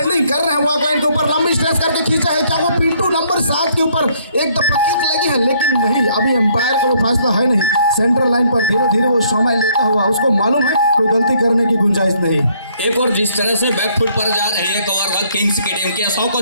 कर रहे हैं, वॉक लाइन के ऊपर लंबी स्ट्रेच करके खींचा है, क्या वो पिंटू नंबर 7 के ऊपर एक दफा किक लगी है, लेकिन नहीं, अभी एम्पायर का वो फैसला है नहीं। सेंट्रल लाइन पर धीरे धीरे वो समय लेता हुआ, उसको मालूम है कोई गलती करने की गुंजाइश नहीं। एक और जिस तरह से बैकफुट पर जा रही है कवर किंग्स की टीम के 100 को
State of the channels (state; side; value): inverted; both; correlation -0.66